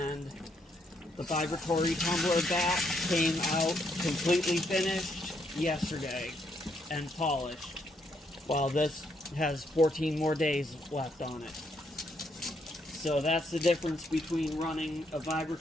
the Vibratory tumbler back came out completely finished yesterday and polished, while this has 14 more days left on it. So that's the difference between running a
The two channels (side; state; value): both; normal; correlation 0.75